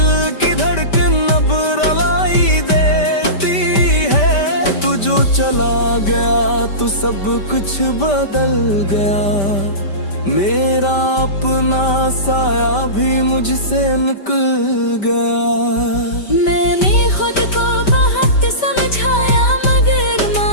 की धड़कन अब रुलाई देती है। तू जो चला गया तो सब कुछ बदल गया, मेरा अपना साया भी मुझसे निकल गया। मैंने खुद को बहुत समझाया मगर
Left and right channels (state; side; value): late; right; 5.1 ms